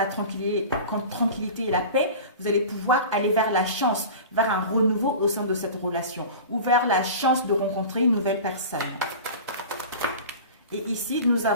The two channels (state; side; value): inverted; both; correlation -0.34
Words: tranquillité et la paix, vous allez pouvoir aller vers la chance, vers un renouveau au sein de cette relation, ou vers la chance de rencontrer une nouvelle personne. Et ici, nous